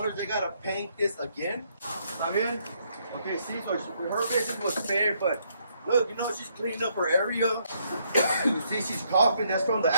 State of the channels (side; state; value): both; inverted; correlation -0.72